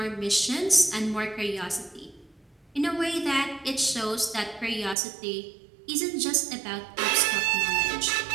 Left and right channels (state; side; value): drops out; left; at 5.0 s